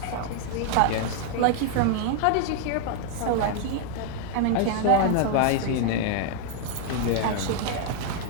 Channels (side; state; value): both; different; correlation 0.00